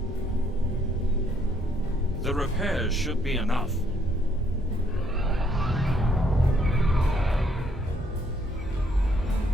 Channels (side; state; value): both; normal; correlation 0.69